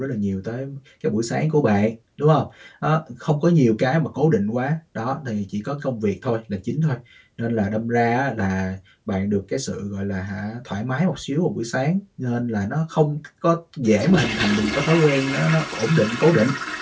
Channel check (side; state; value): both; identical; correlation 1.00